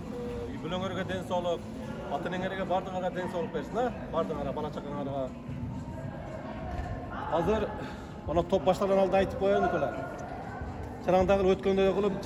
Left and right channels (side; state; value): both; identical; correlation 1.00